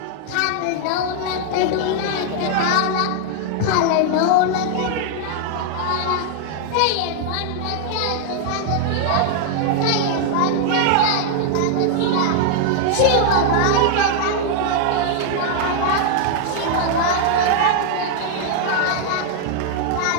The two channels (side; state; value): both; different; correlation 0.00